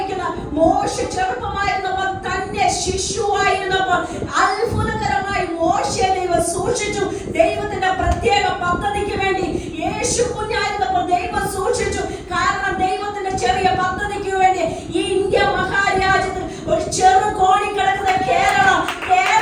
മോശ ചെറുപ്പമായിരുന്നപ്പോൾ തന്നെ ശിശുവായിരുന്നപ്പോൾ അത്ഭുതകരമായി മോശയെ ദൈവം സൂക്ഷിച്ചു. ദൈവത്തിന്റെ പ്രത്യേക പദ്ധതിക്ക് വേണ്ടി യേശു കുഞ്ഞായിരുന്നപ്പോൾ ദൈവം സൂക്ഷിച്ചു. കാരണം ദൈവത്തിന്റെ ചെറിയ പദ്ധതിക്ക് വേണ്ടി ഈ ഇന്ത്യ മഹാരാജ്യത്തിൽ ഒരു ചെറു കോണി കിടക്കുന്ന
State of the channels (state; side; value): identical; both; correlation 1.00